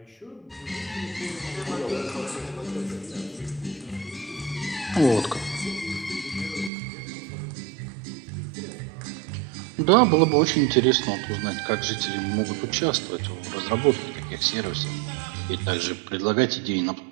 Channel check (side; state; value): left; drops out; at 6.7 s